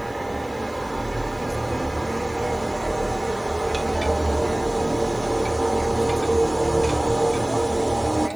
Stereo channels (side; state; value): right; noise; hiss, 27 dB below the sound